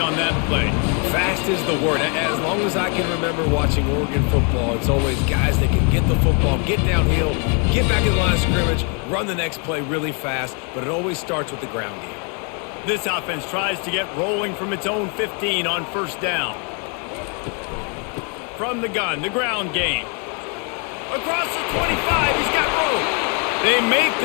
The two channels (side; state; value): right; quieter; 36.8 dB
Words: that play. Fast is the word. As long as I can remember watching Oregon football, it's always guys that can get the football, get downhill, get back in the line of scrimmage, run the next play really fast, but it always starts with the ground game. This offense tries to get rolling from its own 15 on first down. From the gun, the ground game. Across the 25, he's got room. They make